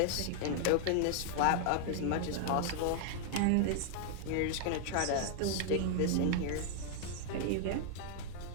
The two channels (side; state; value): both; different; correlation 0.00